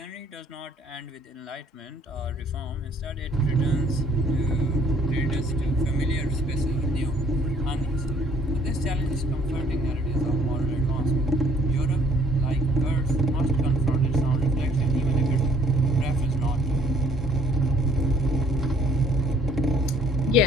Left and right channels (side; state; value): both; normal; correlation 0.61